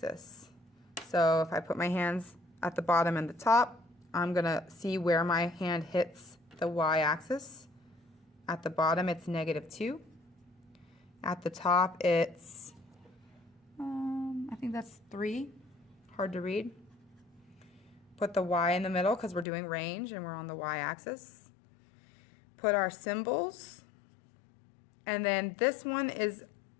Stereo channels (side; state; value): right; drops out; at 19.5 s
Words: So if I put my hands at the bottom and the top, I'm going to see where my hand hits the y-axis. At the bottom it's -2. At the top it's, I think that's 3, hard to read. Put the y in the middle because we're doing range and we're on the y-axis. Put our symbols. And then this one is